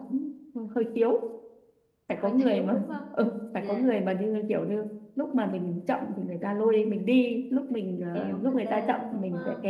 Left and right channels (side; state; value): both; identical; correlation 1.00